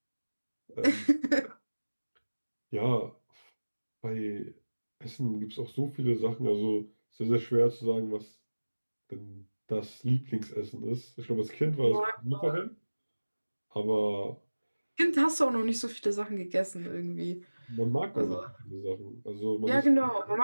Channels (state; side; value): inverted; both; correlation -1.00